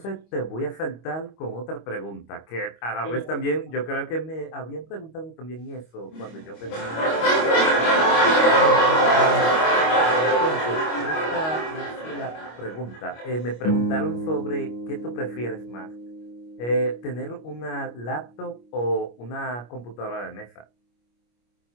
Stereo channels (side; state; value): right; late; 25 ms